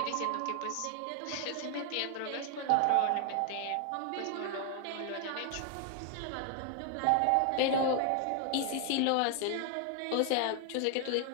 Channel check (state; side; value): different; both; correlation 0.00